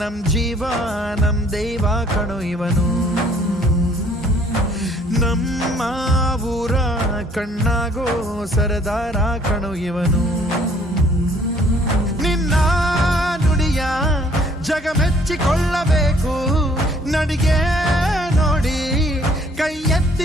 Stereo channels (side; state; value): both; normal; correlation 0.60